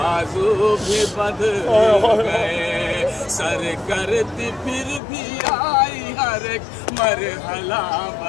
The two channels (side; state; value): right; drops out; at 5.0 s